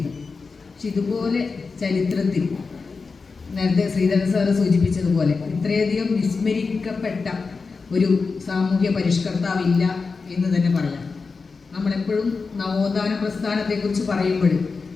പക്ഷെ ഇതുപോലെ ചരിത്രത്തിൽ നേരത്തെ ശ്രീധരൻ സാറ് സൂചിപ്പിച്ചതുപോലെ ഇത്രയധികം വിസ്മരിക്കപ്പെട്ട ഒരു സാമൂഹ്യ പരിഷ്കർത്താവില്ല എന്ന് തന്നെ പറയാം. നമ്മളെപ്പോഴും നവോത്ഥാന പ്രസ്ഥാനത്തെക്കുറിച്ച് പറയുമ്പോൾ,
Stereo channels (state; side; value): quieter; right; 4.5 dB